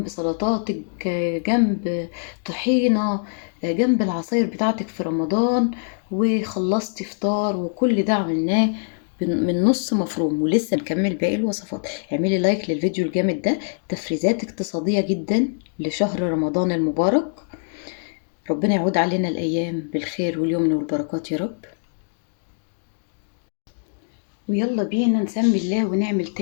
سلطاتك، جنب طحينة، جنب العصاير بتاعتك في رمضان، وخلصتي فطار. وكل ده عملناه من نص مفروم، ولسه نكمل باقي الوصفات. اعملي لايك للفيديو الجامد ده، تفريزات اقتصادية جدا لشهر رمضان المبارك. ربنا يعود علينا الأيام بالخير واليمن والبركات يا رب. ويلا بينا نسمي الله ونعمل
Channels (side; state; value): right; silent; digital silence